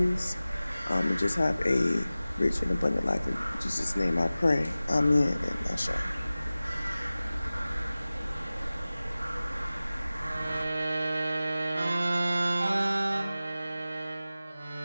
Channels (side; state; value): both; inverted; correlation -0.97